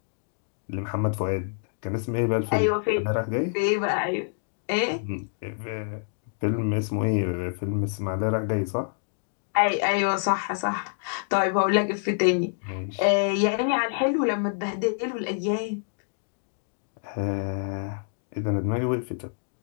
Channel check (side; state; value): right; silent; digital silence